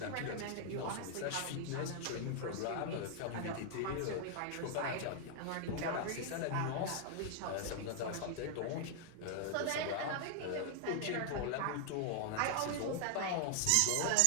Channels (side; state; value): both; different; correlation 0.00